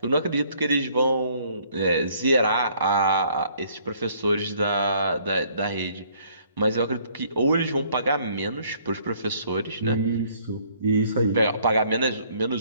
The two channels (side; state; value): both; inverted; correlation -0.62